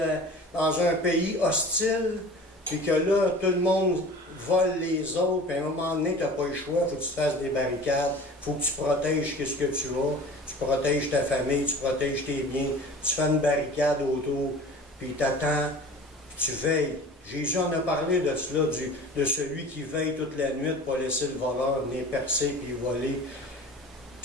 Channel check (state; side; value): normal; both; correlation 0.41